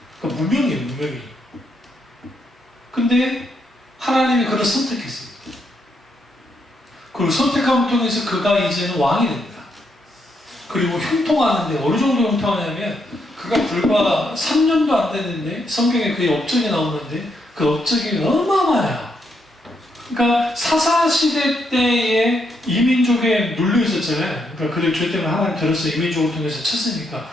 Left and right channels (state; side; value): normal; both; correlation 0.78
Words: 그러니까 무명이에요, 무명이. 근데 하나님이 그를 선택했습니다. 그리고 선택함을 통해서 그가 이제는 왕이 됩니다. 그리고 형통하는데 어느 정도 형통하냐면 그가 불과 3년도 안 됐는데 성경에 그의 업적이 나오는데 그 업적이 어마어마해요. 그러니까 사사시대 때에 이민족에 눌려 있었잖아요. 그러니까 그들 죄 때문에 하나님 들어서 이민족을 통해서 쳤으니까